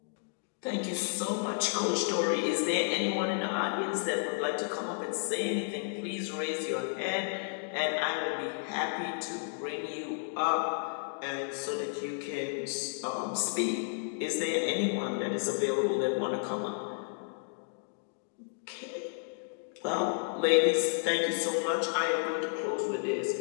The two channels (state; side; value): silent; right; digital silence